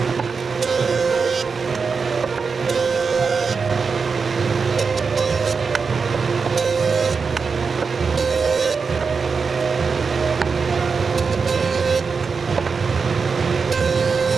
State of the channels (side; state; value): left; quieter; 5.1 dB